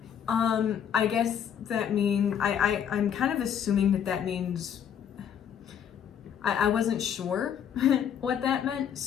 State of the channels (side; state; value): right; quieter; 8.7 dB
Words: I guess that means, I'm kind of assuming that means, I wasn't sure what that meant,